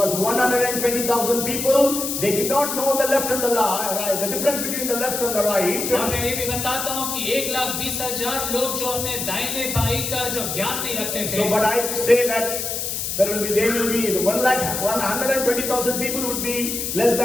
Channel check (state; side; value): noise; left; hiss, 3 dB below the sound